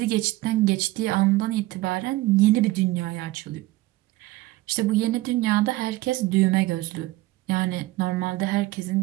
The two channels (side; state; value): left; quieter; 18.6 dB